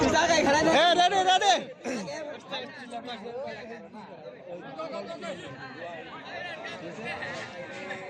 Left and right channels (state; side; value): identical; both; correlation 1.00